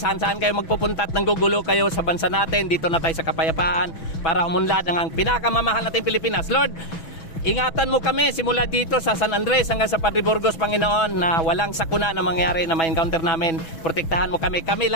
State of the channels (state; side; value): late; right; 6.1 ms